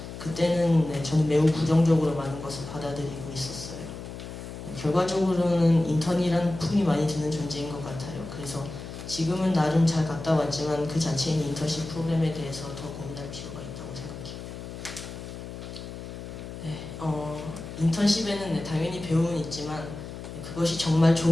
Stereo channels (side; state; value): left; noise; hum, 10 dB below the sound